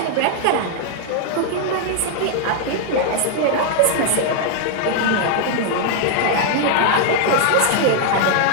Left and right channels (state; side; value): different; both; correlation 0.00